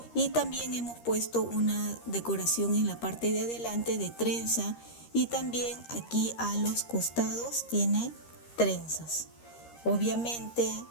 y también hemos puesto una decoración en la parte de adelante de trenza y también aquí a los costados tiene trenzas. Obviamente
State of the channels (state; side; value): late; right; 13 ms